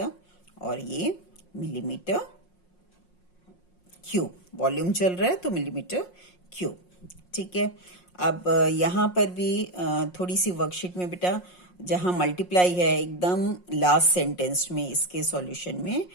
और ये मिलीमीटर क्यूब, वॉल्यूम चल रहा है तो मिलीमीटर क्यूब। ठीक है, अब यहाँ पर भी थोड़ी सी वर्कशीट में बेटा जहाँ मल्टीप्लाई है एकदम लास्ट सेंटेंस में इसके सॉल्यूशन में,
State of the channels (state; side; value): late; right; 5.6 ms